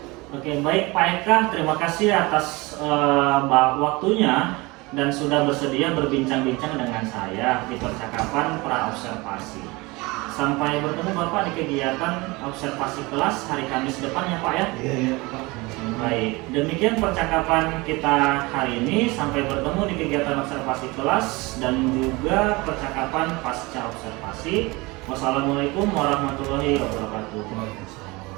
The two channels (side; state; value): left; quieter; 23.8 dB